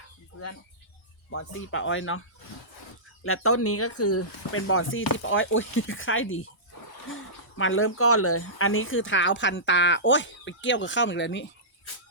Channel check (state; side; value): normal; both; correlation -0.19